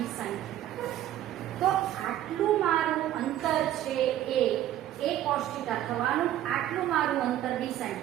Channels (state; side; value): quieter; left; 12.6 dB